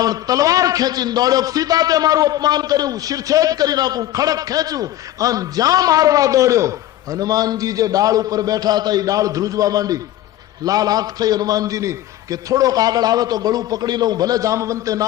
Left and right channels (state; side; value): quieter; right; 13.7 dB